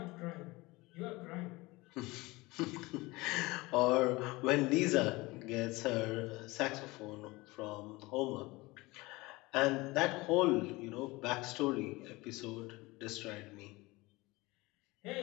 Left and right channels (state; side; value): quieter; right; 22.1 dB